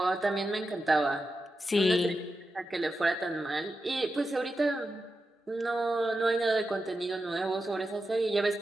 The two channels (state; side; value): normal; both; correlation 0.89